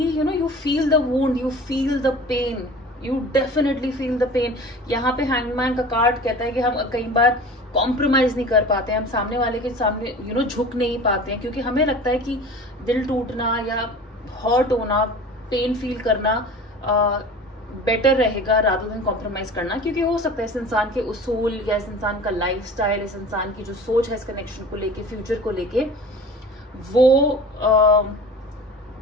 you feel the wound, you feel the pain, you definitely feel the pain. यहाँ पे हैंगमैन का कार्ड कहता है कि हम कई बार कॉम्प्रोमाइज नहीं कर पाते, हम सामने वाले के सामने झुक नहीं पाते हैं, क्योंकि हमें लगता है कि दिल टूटना या हर्ट होना, पेन फील करना बेटर रहेगा रादर देन कॉम्प्रोमाइज करना। क्योंकि हो सकता है इस इंसान के उसूल या इस इंसान का लाइफस्टाइल, इस इंसान की जो सोच है इस कनेक्शन को लेके, फ्यूचर को लेके,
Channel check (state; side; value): normal; both; correlation 0.39